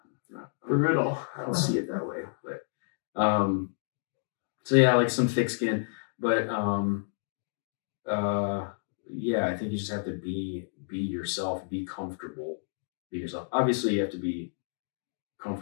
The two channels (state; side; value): silent; right; digital silence